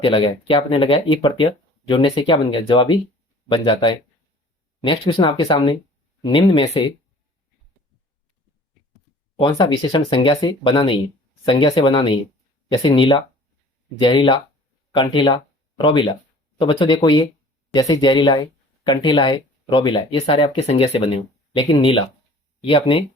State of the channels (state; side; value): normal; both; correlation 0.49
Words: लगाया, क्या आपने लगाया? ई प्रत्यय जोड़ने से क्या बन गया? जवाबी बन जाता है। नेक्स्ट क्वेश्चन आपके सामने, निम्न में से कौन सा विशेषण संज्ञा से बना नहीं है? संज्ञा से बना नहीं है। जैसे नीला, जहरीला, कंठीला, रोबीला। तो बच्चों देखो, ये जैसे जहरीला है, कंठीला है, रोबीला है, ये सारे आपके संज्ञा से बने हो। लेकिन नीला, ये अपने